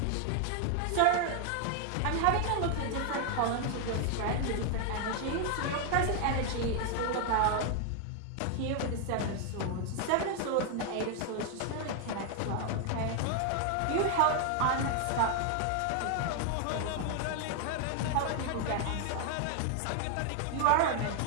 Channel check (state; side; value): different; both; correlation 0.00